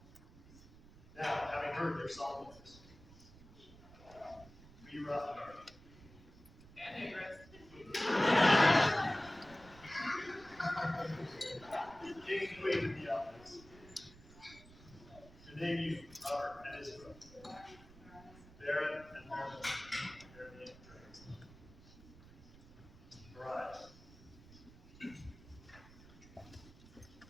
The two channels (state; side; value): noise; right; rumble, 20 dB below the sound